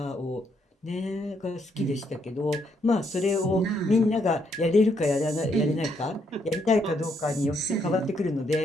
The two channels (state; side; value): normal; both; correlation 0.74